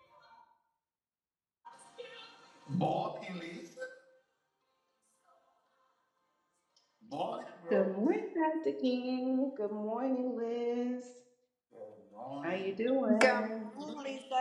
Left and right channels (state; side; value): identical; both; correlation 1.00